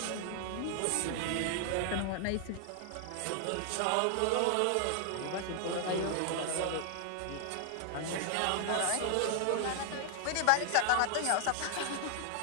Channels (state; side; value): different; both; correlation 0.00